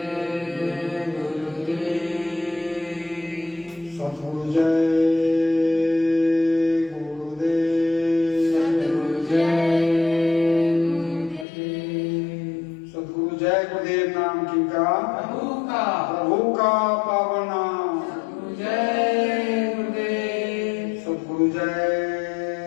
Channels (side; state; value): right; drops out; at 11.5 s